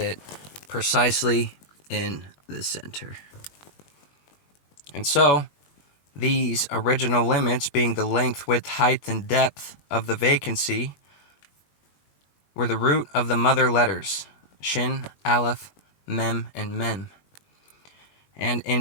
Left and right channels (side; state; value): right; late; 20 ms